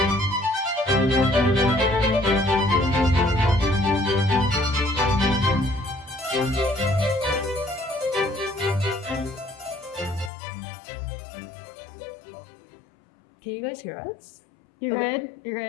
Can you guys hear us? You're Okay. good? You're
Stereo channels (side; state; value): right; drops out; at 10.3 s